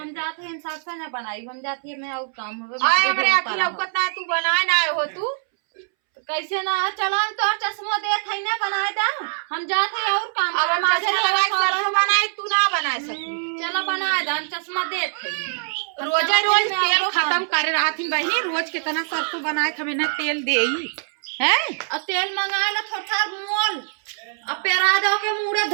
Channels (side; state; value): left; silent; 63 dB below the other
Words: जाते हैं सरसों ना बनाई हम जाती है मैं और काम हो आए हमरे आखी लौकत ना तू बनाए ना हो तू कैसे ना चला हम तो चश्मा दे थे ना बनाए दा हम जाते हैं और काम अब हम चश्मा लगाए सरसों बनाए तू ना बनाए सकू। चला बनाए दा हम चश्मा दे थे रोजे रोज तेल खत्म करे रहा थी बहनी रोज कितना सरसों बनाए हमें ना तेल देई है। अब तेल मंगाए ला थोड़ा मोल अब पेरा दो के मुड़े